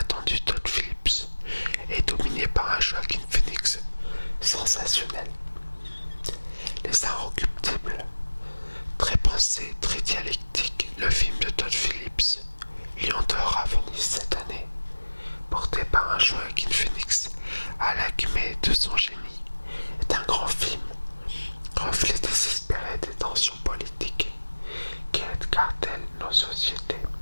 Todd Phillips et dominé par un Joaquin Phoenix sensationnel. Les Inrecuptibles, très pensé, très dialectique, le film de Todd Phillips, Lion d'or à Venise cette année, porté par un Joaquin Phoenix à l'acmé de son génie, est un grand film, reflet désespéré des tensions politiques qui cartellent nos sociétés.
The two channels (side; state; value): both; inverted; correlation -1.00